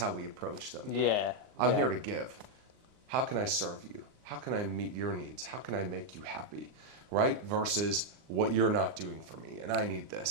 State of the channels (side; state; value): left; late; 39 ms